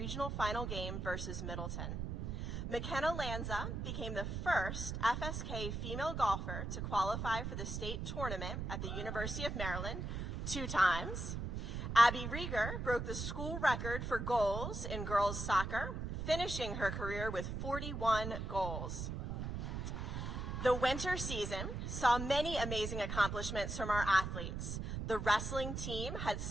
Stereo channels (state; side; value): noise; right; rumble, 4 dB below the sound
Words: final game versus Middleton. McKenna Lanza became the first FSK female golfer to qualify for the state tournament at the University of Maryland 2 times. Abby Rieger broke the school record for goals in girls soccer, finishing her career with 41 goals. The winter season saw many amazing accomplishments from our athletes. The wrestling team had